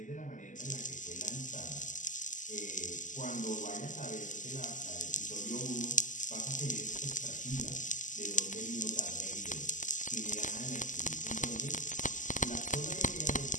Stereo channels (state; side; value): late; right; 0.37 ms